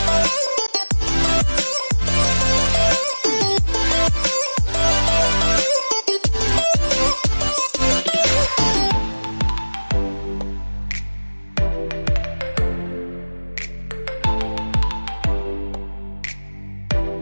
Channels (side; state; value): both; inverted; correlation -1.00